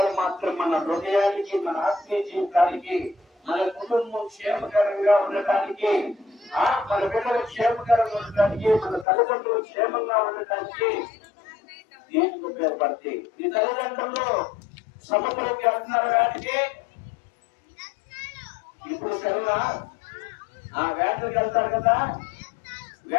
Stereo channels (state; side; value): drops out; right; at 9.1 s